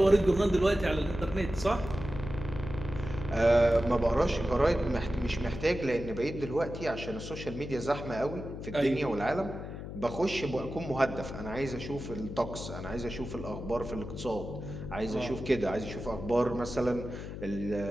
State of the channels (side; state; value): left; noise; hum, 9 dB below the sound